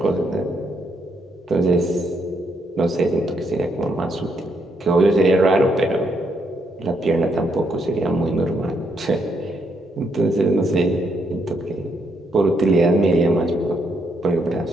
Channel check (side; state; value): both; normal; correlation 0.75